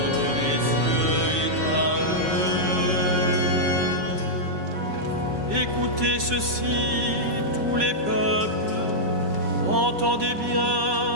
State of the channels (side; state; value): left; late; 5.3 ms